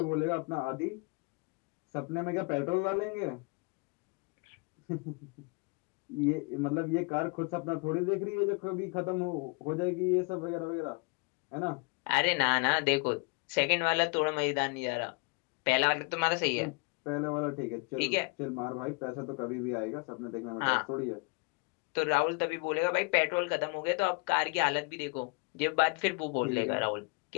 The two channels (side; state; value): right; quieter; 31.2 dB